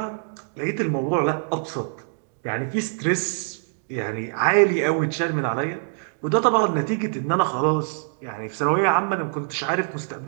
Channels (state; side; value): silent; left; digital silence